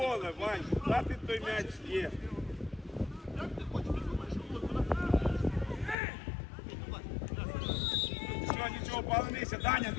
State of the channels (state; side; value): drops out; right; at 6.0 s